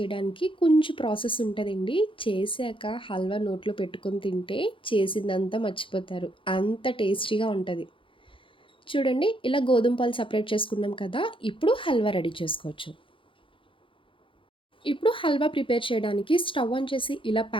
కొంచెం ప్రాసెస్ ఉంటదండి. చేశాక హల్వా నోట్లో పెట్టుకొని తింటే చేసిందంతా మర్చిపోతారు. అంత టేస్టీగా ఉంటది. చూడండి ఇలా గోధుమ పాలు సెపరేట్ చేసుకున్నాం కదా! ఇప్పుడు హల్వా రెడీ చేసుకోవచ్చు. ఇప్పుడు హల్వా ప్రిపేర్ చేయడానికి స్టవ్ ఆన్ చేసి ఇలా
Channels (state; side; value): late; right; 0.25 ms